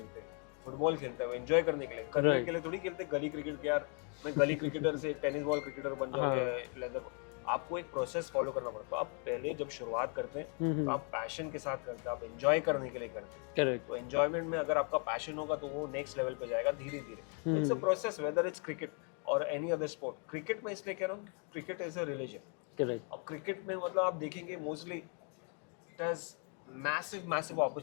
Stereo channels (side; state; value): right; quieter; 39.8 dB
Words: हैं, फुटबॉल खेलते हैं वो एंजॉय करने के लिए, करियर के लिए थोड़ी खेलते गली क्रिकेट के यार मैं गली क्रिकेटर से टेनिस बॉल क्रिकेटर बन जाऊंगा लेदर। आपको एक प्रोसेस फॉलो करना पड़ता है। आप पहले जब शुरुआत करते हैं तो आप पैशन के साथ करते हैं, आप एंजॉय करने के लिए करते हैं। करेक्ट। तो एंजॉयमेंट में अगर आपका पैशन होगा तो वो नेक्स्ट लेवल पे जाएगा धीरे धीरे। It's a process whether it's cricket और एनी अदर स्पोर्ट। क्रिकेट में इसलिए कह रहा हूँ cricket is a religion. Correct. अब क्रिकेट में मतलब आप देखेंगे mostly it has massive